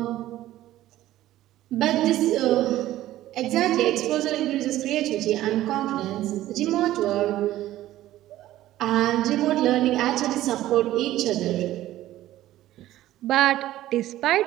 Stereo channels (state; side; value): quieter; left; 14.5 dB